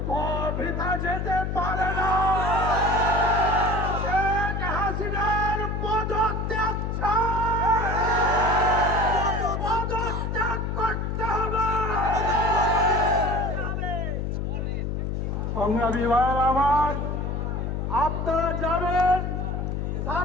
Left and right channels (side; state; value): left; noise; hum, 2 dB below the sound